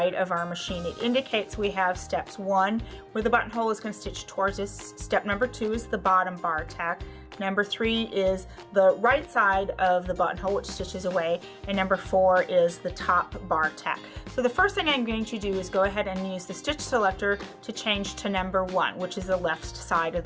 of our machine. It indicates we have steps 1, where the buttonhole is going to stitch towards us. Step number 2 is the bottom bar tack. Number 3 is the right side of the buttonhole, which stitches away, and number 4 is the top bar tack. So the first thing I'm going to do is go ahead and use the stitch selector to change to number 1, which is the left side of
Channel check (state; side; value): identical; both; correlation 1.00